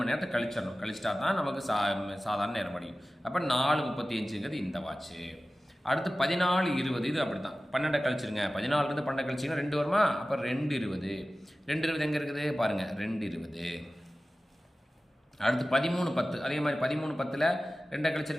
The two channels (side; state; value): both; normal; correlation 0.96